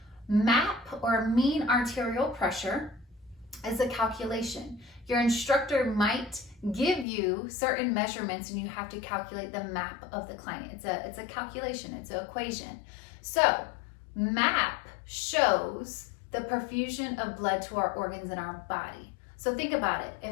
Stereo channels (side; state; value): right; drops out; at 7.1 s